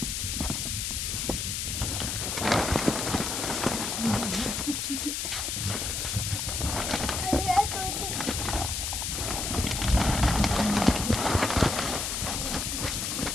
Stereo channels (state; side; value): noise; left; hiss, 2 dB below the sound